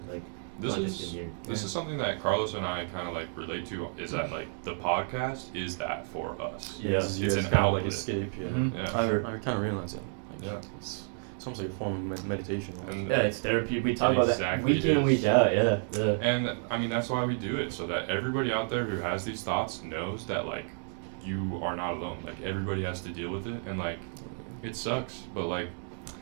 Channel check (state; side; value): silent; left; 57 dB below the other